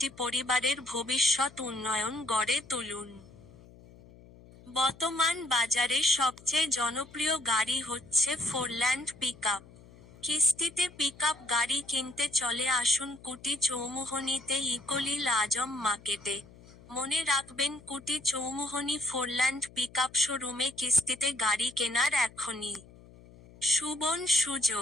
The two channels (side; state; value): left; noise; hum, 22 dB below the sound